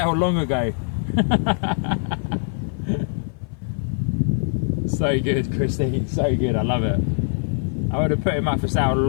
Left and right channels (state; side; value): silent; right; 58 dB below the other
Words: long ago. So good, Christine, so good, I love it. I would have put him up for sale